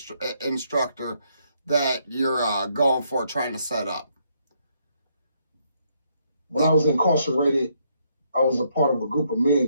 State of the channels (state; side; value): inverted; both; correlation -0.73